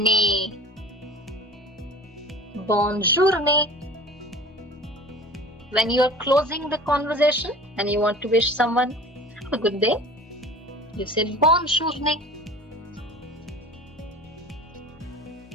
Bonjour, ne. When you are closing the conversation and you want to wish someone a good day, you say bonjour, ne.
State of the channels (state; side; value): normal; both; correlation 0.40